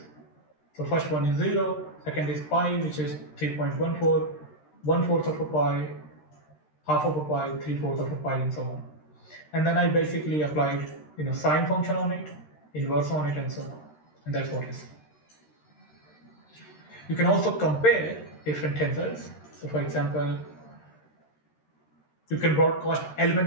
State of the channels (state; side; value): late; right; 13 ms